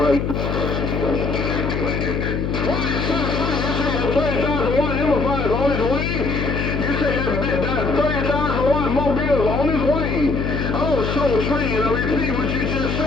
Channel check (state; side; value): noise; left; hum, 1 dB below the sound